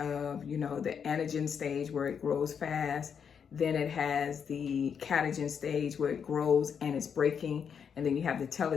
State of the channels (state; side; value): quieter; right; 7.1 dB